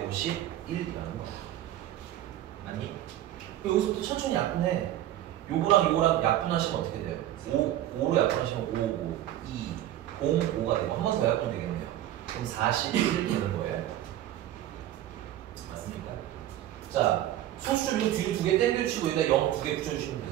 거야. 맞니? 여기서부터 천천히 약분해. 요거랑 약분하시면 어떻게 돼요? 5로 약분하시면 5, 2, 0, 5가 되고 한 번 더 약분 되겠네요. 그럼 41 되는 거예요. 맞습니까? 자, 소수 이거 뒤로 두 개 땡겨주시고 여기다 0 두 개 붙여주시면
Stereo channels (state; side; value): quieter; left; 13.0 dB